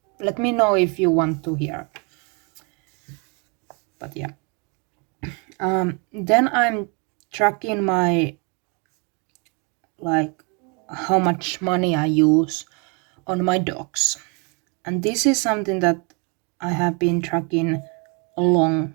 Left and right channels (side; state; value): left; quieter; 33.3 dB